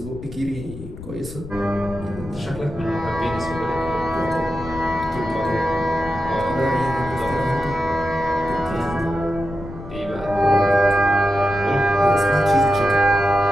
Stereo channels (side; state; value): left; noise; rumble, 13 dB below the sound